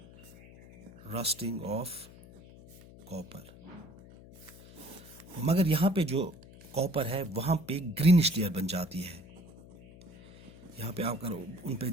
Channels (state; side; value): noise; left; hum, 20 dB below the sound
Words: रस्टिंग ऑफ कॉपर। मगर यहाँ पे जो कॉपर है, वहाँ पे ग्रीनिश लेयर बन जाती है। यहाँ पे आप अगर उन पे